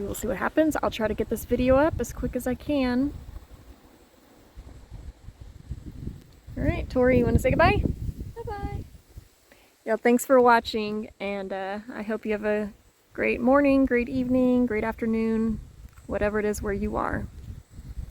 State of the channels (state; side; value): identical; both; correlation 1.00